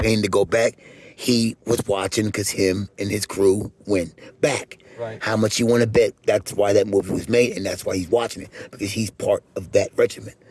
to go back, he was watching because him and his crew went back. Right. How much you want to bet? That's why that movie was made, and that's why he's watching it, because he's part of that regiment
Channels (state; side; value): identical; both; correlation 1.00